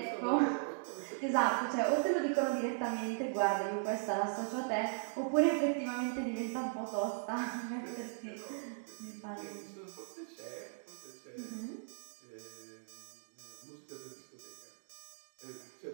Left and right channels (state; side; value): silent; left; digital silence